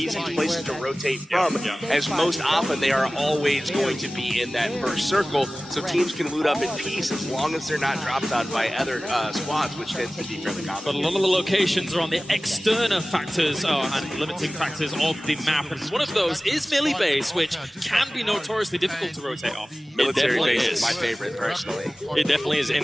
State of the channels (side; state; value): both; normal; correlation 0.97